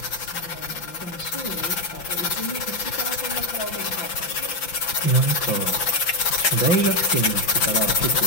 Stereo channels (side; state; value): right; late; 5.9 ms